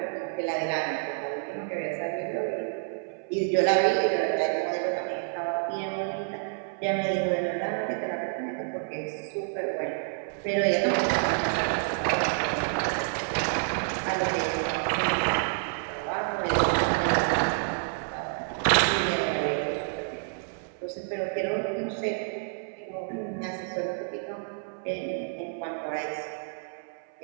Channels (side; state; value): left; silent; 59 dB below the other